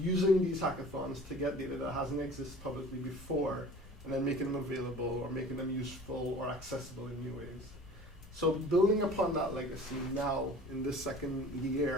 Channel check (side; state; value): both; normal; correlation 0.44